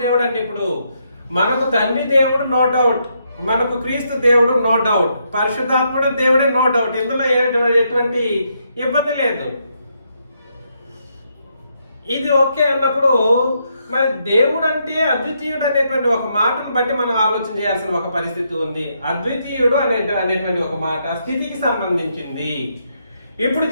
దేవుడు అంటే ఇప్పుడు మనకు తండ్రి దేవుడు నో డౌట్, మనకు క్రీస్తు దేవుడు నో డౌట్, పరిశుద్ధాత్ముడు దేవుడే నో డౌట్. ఇందులో ఎటువంటి ఇబ్బంది లేదు. ఇది ఓకే అన్నప్పుడు మరి దేవుడు అంటే అద్వితీయుడు అనేటువంటి ఒక మాటను బట్టి మనం ఆలోచన చేయాల్సిన ఒక పరిస్థితి ఉంది. అద్వితీయుడు అనేటువంటి ఒక మాట స్థితికి సంబంధించింది. ఇప్పుడు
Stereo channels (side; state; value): both; inverted; correlation -0.77